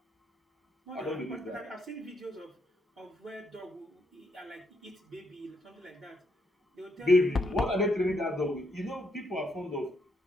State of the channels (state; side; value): normal; both; correlation 0.76